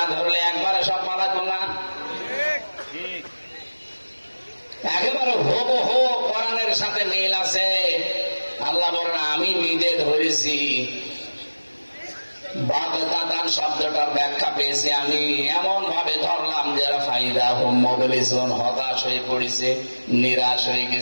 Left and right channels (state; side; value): inverted; both; correlation -1.00